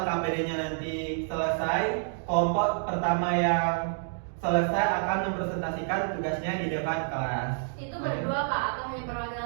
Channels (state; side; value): silent; left; digital silence